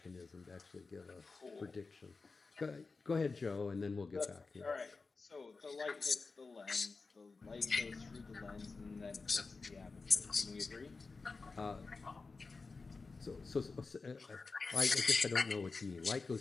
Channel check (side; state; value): right; quieter; 4.1 dB